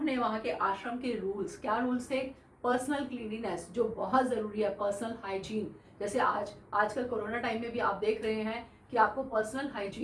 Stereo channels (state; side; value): identical; both; correlation 1.00